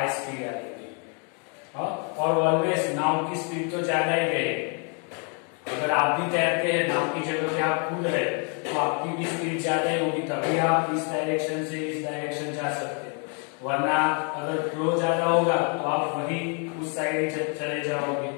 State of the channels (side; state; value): right; quieter; 38.0 dB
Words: स्पीड आएगी। और ऑलवेज नाव की स्पीड तो ज्यादा ही रहेगी। अगर आप भी तैरते हैं, नाव की जगह पे आप कूद रहे, तो आपकी भी स्पीड ज्यादा ही होगी, तभी आप इस डायरेक्शन से इस डायरेक्शन जा सकते हैं। वरना अगर फ्लो ज्यादा होगा तो आप वही उस साइड चले जाओगे।